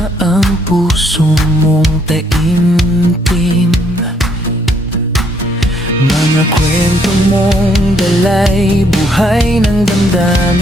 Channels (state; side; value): normal; both; correlation 0.69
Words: ang puso mong taimtim. Mga kwento mong dalay buhay ng